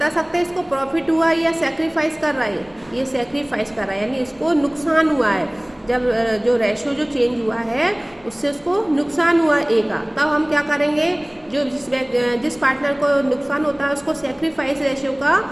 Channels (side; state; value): left; noise; rumble, 29 dB below the sound